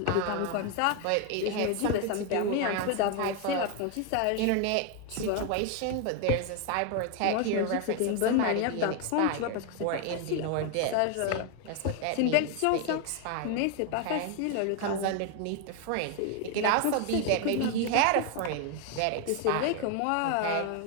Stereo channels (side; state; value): both; different; correlation 0.01